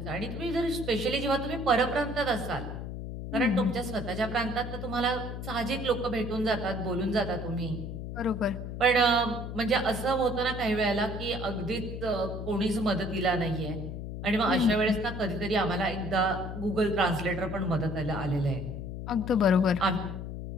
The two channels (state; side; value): noise; left; hum, 7 dB below the sound